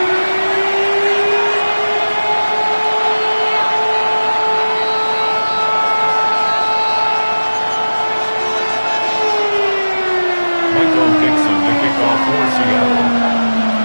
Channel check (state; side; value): inverted; both; correlation -1.00